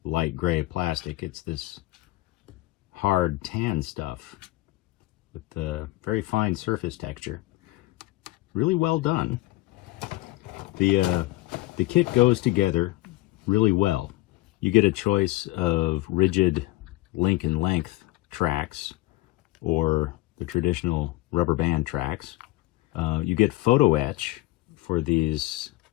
light gray plastic. It's this hard tan stuff with the very fine surface texture. Really well done. The kit goes together really well. You get a choice of rigid link and length tracks or the traditional rubber band tracks. You get photo etch for these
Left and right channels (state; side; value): quieter; right; 18.4 dB